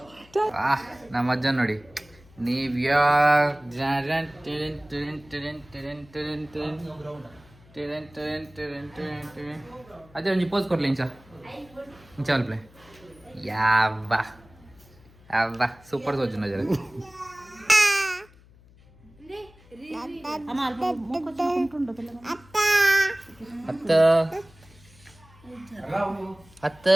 ನಮ್ಮ ಅಜ್ಜ ನೋಡಿ. ನೀವು ಅದೇ ಒಂಜಿ ಪೋಸ್ ಕೊಡ್ಲಿ ಇಂಚ ಅಲ್ಪ್ಲೆ ಯಾವ್ವ ಅವ್ವ ಸೂಪರ್ ತೋಜು ನಜರ ಅತ್ತ ಅತ್ತ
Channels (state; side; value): noise; left; hum, 26 dB below the sound